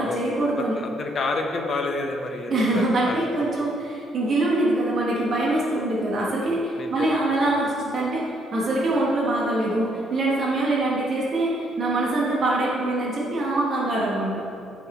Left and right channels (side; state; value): both; normal; correlation 0.70